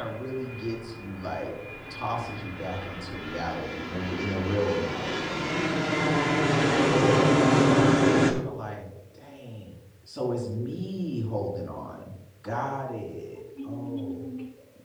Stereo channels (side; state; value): both; identical; correlation 1.00